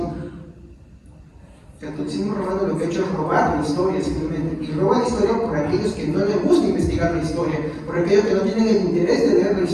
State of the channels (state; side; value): identical; both; correlation 1.00